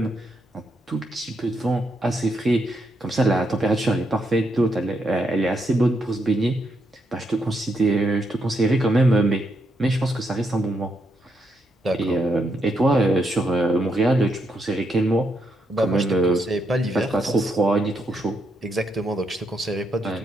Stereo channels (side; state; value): both; normal; correlation 0.79